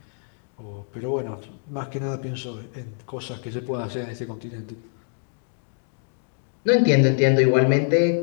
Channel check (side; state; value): right; silent; digital silence